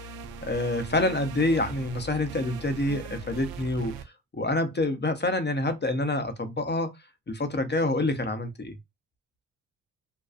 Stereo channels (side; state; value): both; normal; correlation 0.37